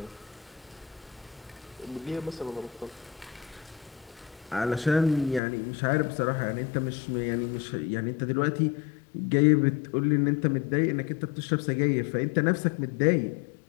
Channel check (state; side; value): drops out; right; at 5.4 s